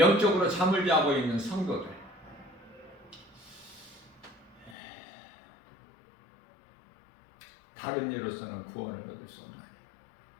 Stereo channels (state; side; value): drops out; right; at 4.8 s